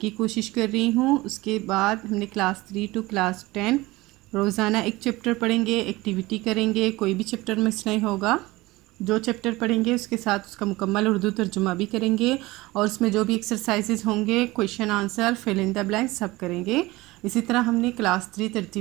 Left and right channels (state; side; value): quieter; left; 20.3 dB